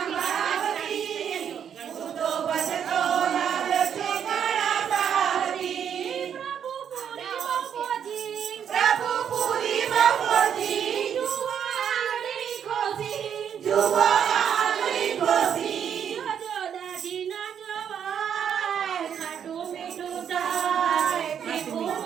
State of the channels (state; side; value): quieter; left; 8.4 dB